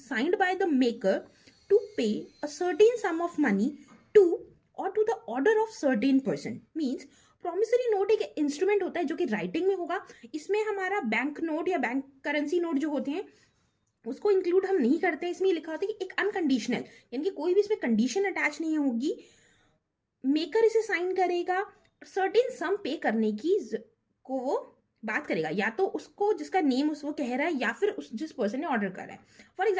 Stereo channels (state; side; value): identical; both; correlation 1.00